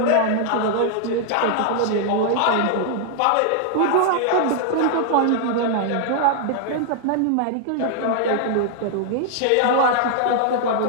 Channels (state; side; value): different; both; correlation 0.00